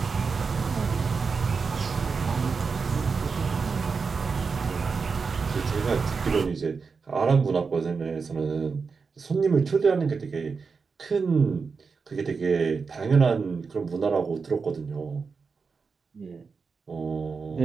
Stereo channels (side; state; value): left; quieter; 5.0 dB